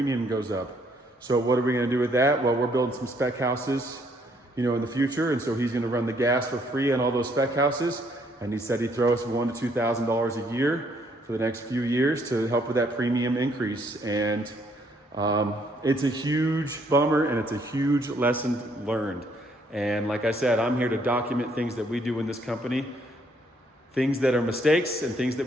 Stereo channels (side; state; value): both; normal; correlation 0.68